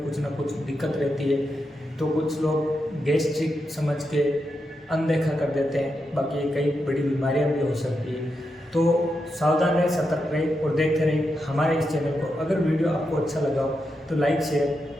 कुछ ना कुछ दिक्कत रहती है, तो कुछ लोग गैस्ट्रिक समझ के अनदेखा कर देते हैं, बाकी कई बड़ी बीमारियां भी हो सकती है। तो सावधान रहें, सतर्क रहें और देखते रहें हमारे इस चैनल को। अगर वीडियो आपको अच्छा लगा हो तो लाइक,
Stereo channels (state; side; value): normal; both; correlation 0.86